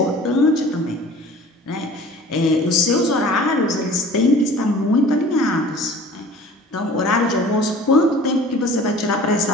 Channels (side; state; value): both; normal; correlation 0.45